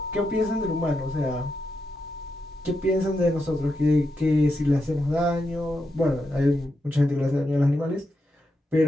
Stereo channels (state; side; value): normal; both; correlation 0.85